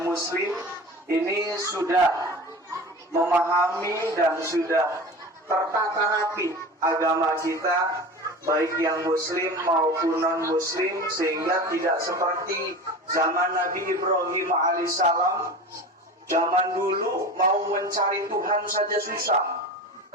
muslim ini sudah memahami dan sudah tertata rapi agama kita, baik yang muslim maupun non muslim, sehingga tidak seperti zaman Nabi Ibrahim alaihissalam. Zaman dulu mau mencari Tuhan saja susah.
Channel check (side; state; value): both; normal; correlation 0.33